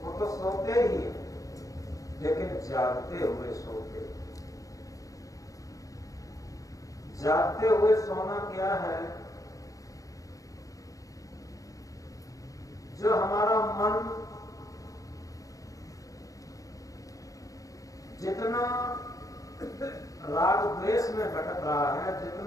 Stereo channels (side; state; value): right; late; 0.17 ms